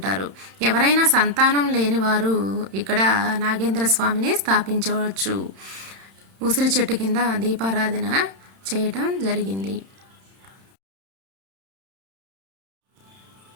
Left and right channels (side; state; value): left; late; 31 ms